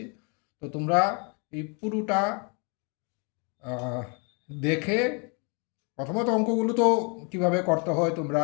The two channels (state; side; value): quieter; right; 35.1 dB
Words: তো তোমরা এই পুরোটা দেখে প্রথমত অঙ্কগুলো তো কিভাবে করতে হয় তোমরা